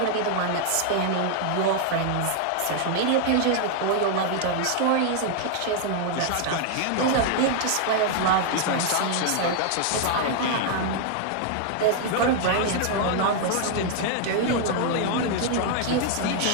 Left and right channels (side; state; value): both; different; correlation 0.00